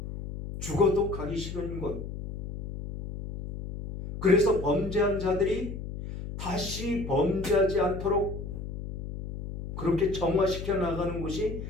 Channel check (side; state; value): left; noise; hum, 8 dB below the sound